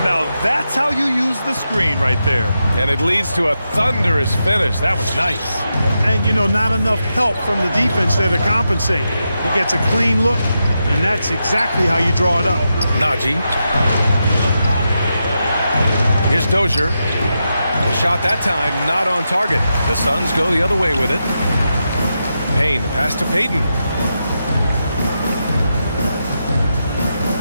Now that's how you use the screen right there. And it leads to a thunderous finish. That was nice. And, you know, not enough help from the defense there to compensate. He gets a clean look, and that's exactly how you draw it up. Najee. Here's Dozier. The shot that time not on target. The Suns go the other way with it. Payne, the pass to Payton.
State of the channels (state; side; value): inverted; both; correlation -0.87